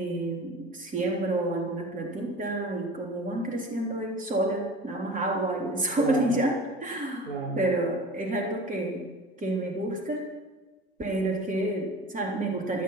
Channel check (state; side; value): normal; both; correlation 0.38